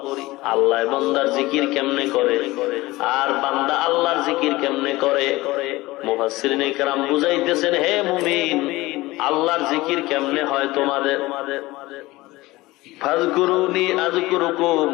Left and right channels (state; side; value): quieter; right; 19.7 dB